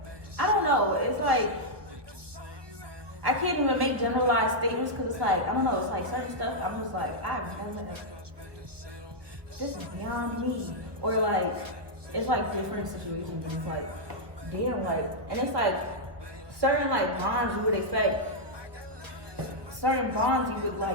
I don't know. It's like I can't even make generalized statements because it's like, I don't know. It's like certain stuff. I'm just like, I've never. This is beyond me. Or like, it's like different situations. And it's like, damn, like, and it's like certain like bonds you would expect. Certain bonds you would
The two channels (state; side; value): late; left; 1.1 ms